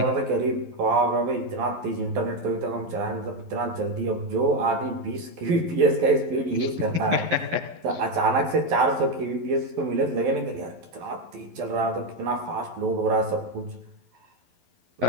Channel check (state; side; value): late; left; 12 ms